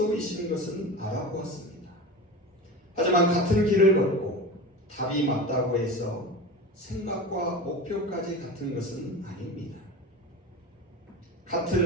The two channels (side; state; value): both; normal; correlation 0.30